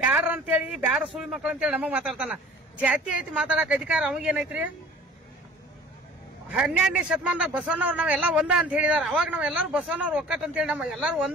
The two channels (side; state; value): both; normal; correlation 0.47